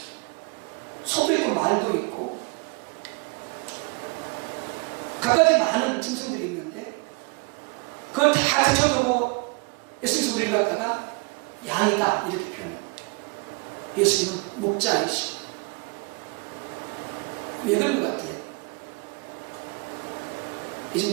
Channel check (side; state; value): left; quieter; 31.6 dB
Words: 소도 있고, 말도 있고, 갖가지 많은 짐승들이 있는데 그걸 다 제쳐두고 예수님께서 우리를 갖다가 양이다 이렇게 표현해요. 예수님은 목자이시고. 왜 그런 것 같아요?